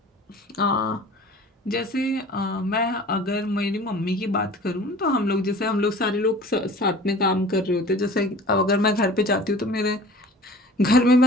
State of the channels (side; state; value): both; normal; correlation 0.44